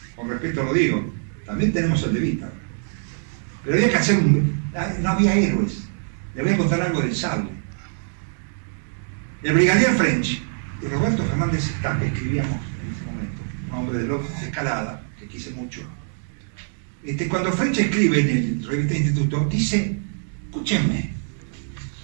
Con respeto lo digo, también tenemos el de Vita. Pero había que hacer no había héroes. Le voy a contar algo del sable. El brigadier French y Roberto Fernández Estape escribíamos en ese momento, un hombre de escalada, que quise mucho. Cuando French escribe en el Revista Instituto, dice, escúchenme,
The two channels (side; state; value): left; silent; digital silence